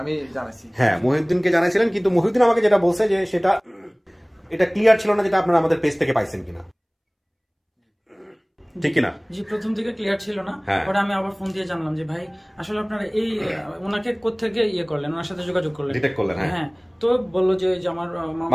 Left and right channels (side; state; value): both; identical; correlation 1.00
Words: আমি জানাইছি, হ্যাঁ, মহিউদ্দিনকে জানাইছিলেন, কিন্তু মহিউদ্দিন আমাকে যেটা বলছে যে সেটা এটা ক্লিয়ার ছিল না, যেটা আপনারা আমাদের পেজ থেকে পাইছেন কিনা, ঠিক কিনা? জি, প্রথম থেকে ক্লিয়ার ছিল না। পরে আমি আবার ফোন দিয়ে জানলাম যে ভাই আসলে আপনারা এই ওনাকে কোত্থেকে ইয়ে করলেন, ওনার সাথে যোগাযোগ করলেন, ডিটেক্ট করলেন? হ্যাঁ। তো বললো যে আমার